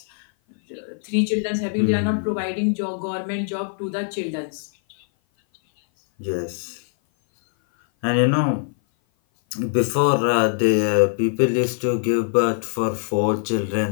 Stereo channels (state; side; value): silent; right; 57 dB below the other